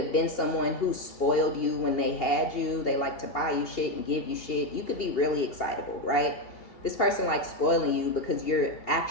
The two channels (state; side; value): late; right; 2.8 ms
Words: been someone who spoiled you when they had you. They like to buy you shit and give you shit. You could be really excitable, right? This person likes spoiling you because you're